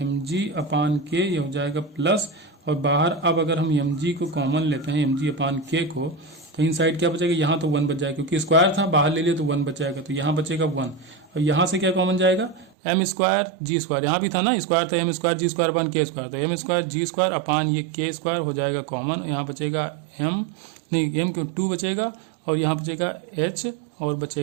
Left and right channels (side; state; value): left; drops out; at 12.7 s